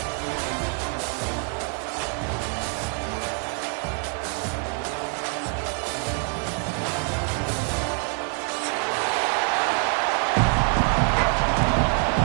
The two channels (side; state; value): left; quieter; 39.0 dB